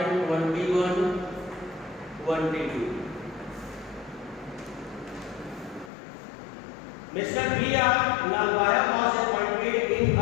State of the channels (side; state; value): right; drops out; at 5.9 s